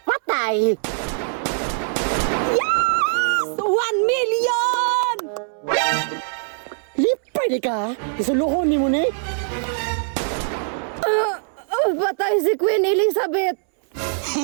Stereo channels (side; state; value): left; silent; 64 dB below the other